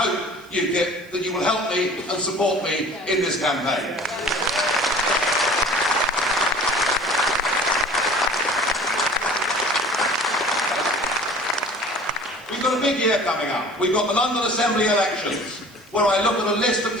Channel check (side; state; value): right; noise; hiss, 28 dB below the sound